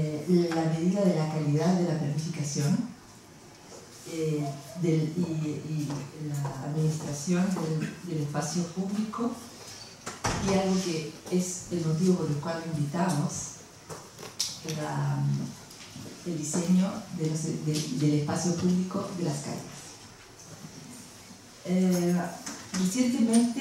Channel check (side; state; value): both; identical; correlation 1.00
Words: medida de la calidad de la planificación y la administración del espacio público, y algo que es el motivo por el cual lo invitamos, el diseño del espacio público de las calles.